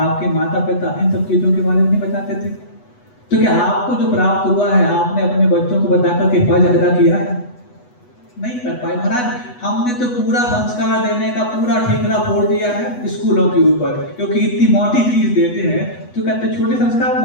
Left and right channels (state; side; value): late; right; 8.1 ms